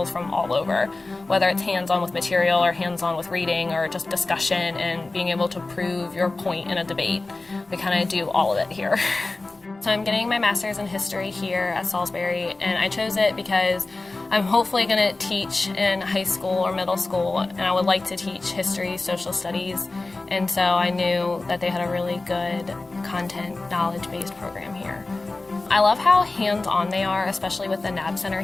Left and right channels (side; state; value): right; quieter; 3.2 dB